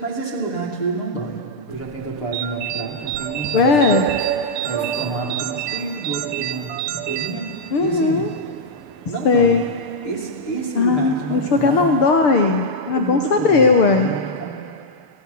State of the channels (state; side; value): late; right; 6.8 ms